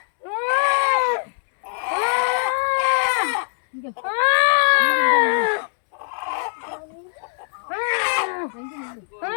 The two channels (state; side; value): silent; right; digital silence